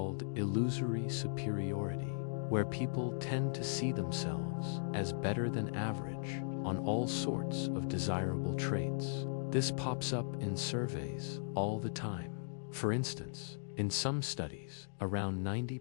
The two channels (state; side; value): silent; right; digital silence